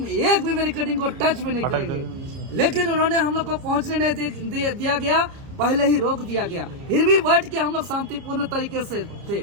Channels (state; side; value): late; left; 30 ms